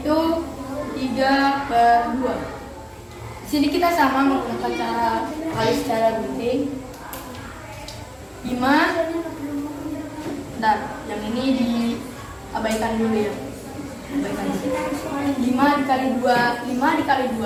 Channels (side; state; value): both; identical; correlation 1.00